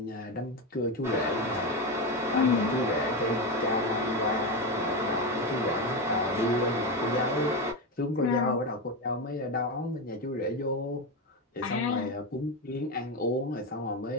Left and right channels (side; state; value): both; normal; correlation 0.15